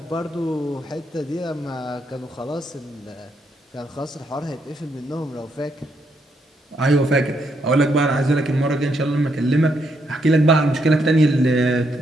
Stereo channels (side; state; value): both; normal; correlation 0.76